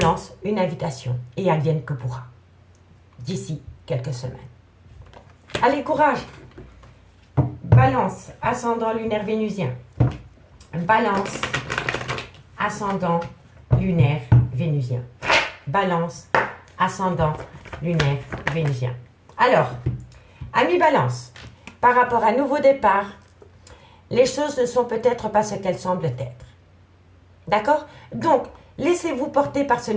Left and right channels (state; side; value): identical; both; correlation 1.00